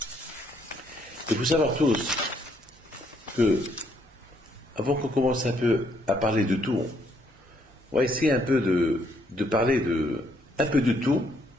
Il faut savoir tous que, avant qu'on commence un peu à parler de tout, on va essayer un peu de parler un peu de tout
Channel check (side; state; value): both; normal; correlation 0.70